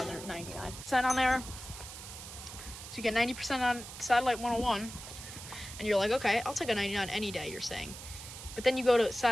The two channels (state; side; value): noise; right; hiss, 12 dB below the sound